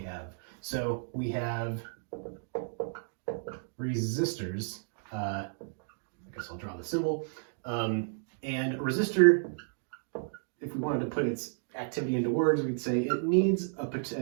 have. So we have resistors. I guess I'll draw the symbol. And a resistor, if we wanted to put its activity into words, we'd say it needs a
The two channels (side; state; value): left; silent; digital silence